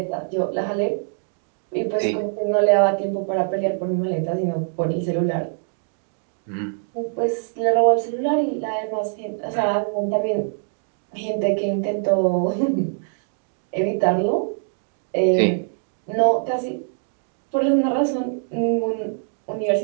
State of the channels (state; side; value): silent; left; digital silence